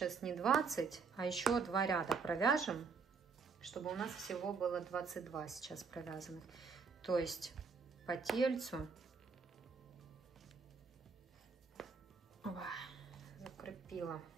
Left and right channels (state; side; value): quieter; left; 5.2 dB